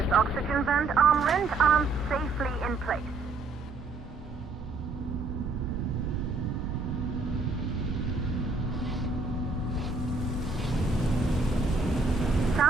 oxygen vent arm rent arms safely in place.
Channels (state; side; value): quieter; left; 3.5 dB